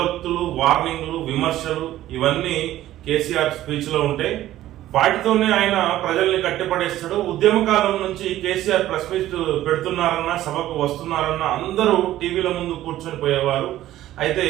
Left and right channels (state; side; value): quieter; left; 14.0 dB